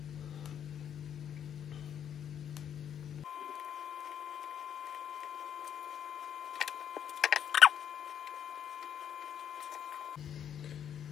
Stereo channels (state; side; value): quieter; right; 9.1 dB